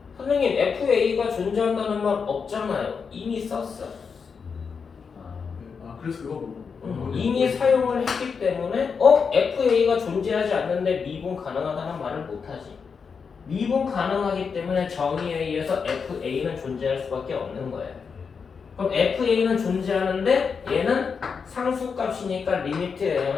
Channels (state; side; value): quieter; right; 5.8 dB